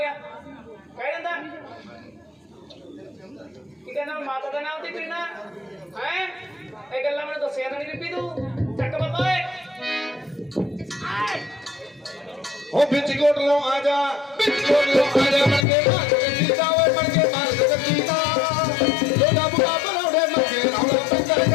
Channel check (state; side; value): drops out; right; at 15.7 s